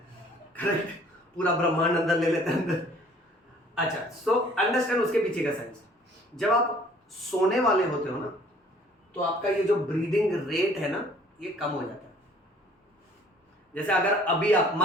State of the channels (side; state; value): both; normal; correlation 0.56